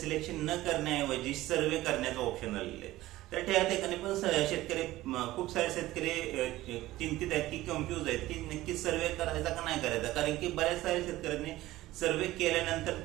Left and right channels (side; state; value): left; quieter; 16.6 dB